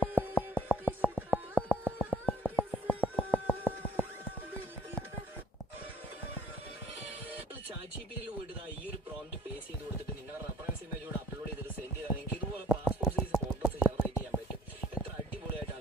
ChatGPT പോയിട്ട് ഈ ഒരു പ്രോംപ്റ്റ് പേസ്റ്റ് ചെയ്ത് കൊടുത്തിട്ട് നിങ്ങളുടെ റെഫറൻസ് ഇമേജ് കൂടെ അപ്ലോഡ് ചെയ്തിട്ട് സെൻഡ് ചെയ്താൽ നിങ്ങൾക്ക് ഇതുപോലെ പാസ്പോർട്ട് സൈസ് ഫോട്ടോസ് ജനറേറ്റ് ചെയ്യാൻ പറ്റും. എത്ര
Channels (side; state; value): both; normal; correlation 0.56